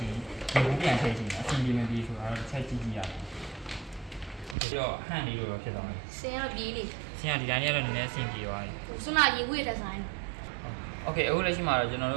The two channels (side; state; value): left; drops out; at 4.5 s